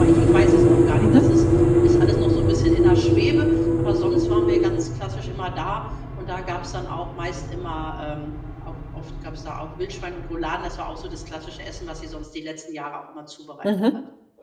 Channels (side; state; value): both; identical; correlation 1.00